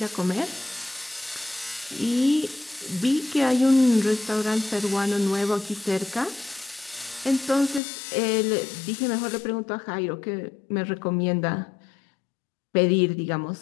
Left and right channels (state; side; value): drops out; right; at 7.8 s